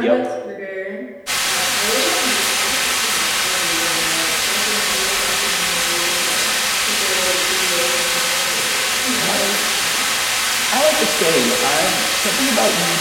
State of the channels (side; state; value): both; identical; correlation 1.00